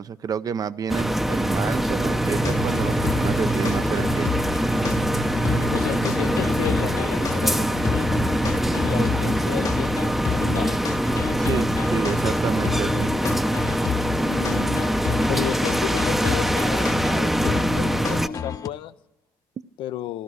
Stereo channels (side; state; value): both; normal; correlation 0.84